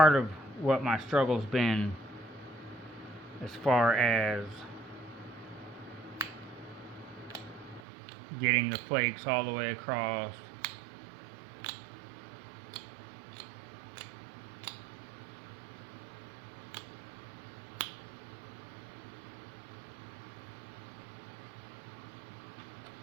of what my struggle's been as far as getting the flakes all the way across.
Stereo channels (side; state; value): left; drops out; at 7.8 s